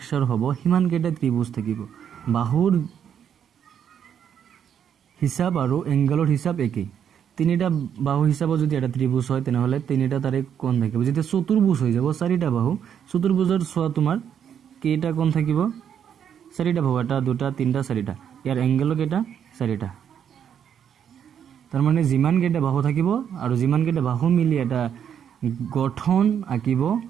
হ'ব, সিমান কেইটা ত্ৰিভুজ থাকিব। বাহুৰ হিচাপ আৰু এংগেলৰ হিচাপ একেই। তিনিটা বাহু হিচাপত যদি এটা ত্ৰিভুজ হয়, তেনেহ'লে তিনিটা তাৰে কোণ থাকিব। যেতিয়া চতুৰ্ভুজ হৈ যাব, 4টা বাহু, চতুৰ্ভুজৰ চোৱা তোমাৰ কেইটা কোণ থাকিব? 4টা বাহু, 1, 2, 3, 4টা। ইয়াৰ এংগেলো কেইটা? 4টা। তাৰমানে যিমান কেইটা বাহু থাকিব আৰু যিমান কেইটা বাহু মিলি এটা গঠন আঁকিব,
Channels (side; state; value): left; quieter; 8.6 dB